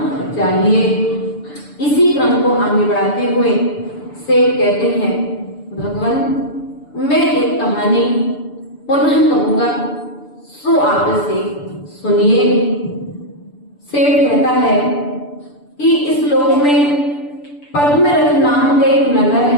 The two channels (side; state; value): right; late; 6.9 ms